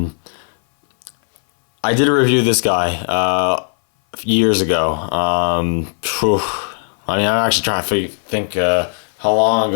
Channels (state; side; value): silent; right; 60 dB below the other